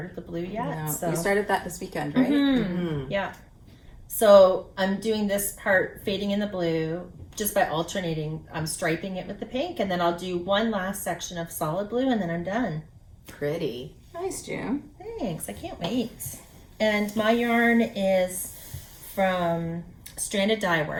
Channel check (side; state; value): both; identical; correlation 1.00